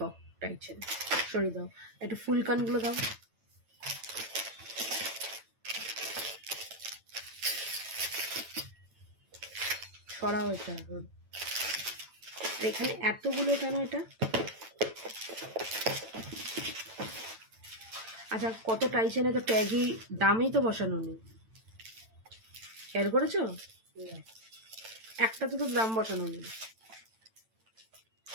টাইচেন। সরিয়ে দাও, একটু ফুল কানগুলো দাও। সরাও এটা। এখানে এতগুলো কেন এটা? আচ্ছা কত টাইচেনে তো ট্যাগই দামই তো বসানো নেই, খেয়াল করেছো? একটা তো দাম বসানো নেই।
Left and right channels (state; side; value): late; left; 9.0 ms